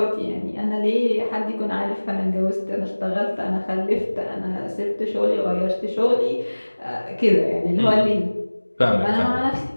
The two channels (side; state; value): both; inverted; correlation -1.00